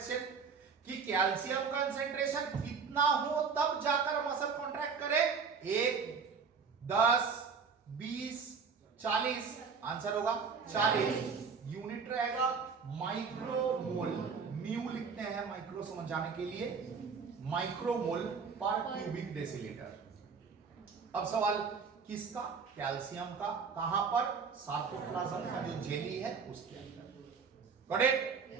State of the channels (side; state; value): left; quieter; 5.6 dB